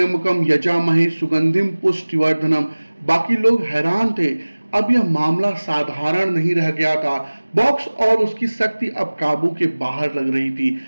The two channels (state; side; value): inverted; both; correlation -1.00